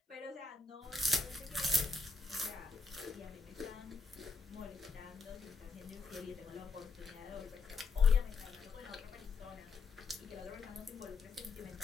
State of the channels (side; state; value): right; quieter; 4.1 dB